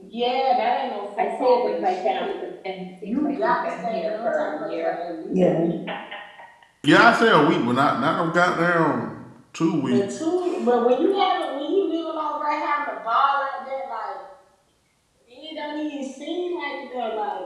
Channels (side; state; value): both; identical; correlation 1.00